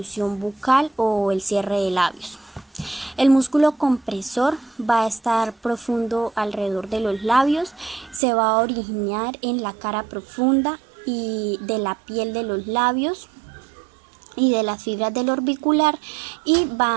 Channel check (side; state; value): left; drops out; at 8.2 s